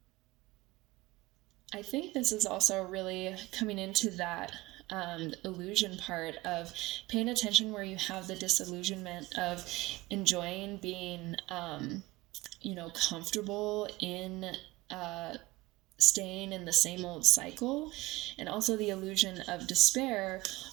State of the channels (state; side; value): quieter; left; 18.6 dB